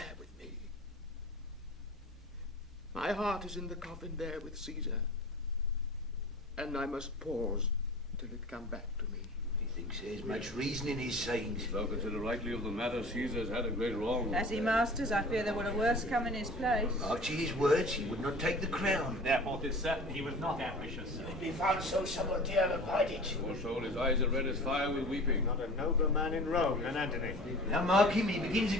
with me. My heart is in the coffin there with Caesar, and I must pause till it come back to me. He thinks there's much reason in his sayings. Thou consider rightly of the matter, Caesar's had a great wrong. As he masters, I fear there will a worse come in his place. After his words, he would not take the crown. Therefore, 'tis certain he was not ambitious. If he found so, someone dare abide it. Poor soul, his eyes are red as fire with weeping. Not a nobler man in Rome than Antony. Now mark him, he begins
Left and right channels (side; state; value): both; normal; correlation 0.41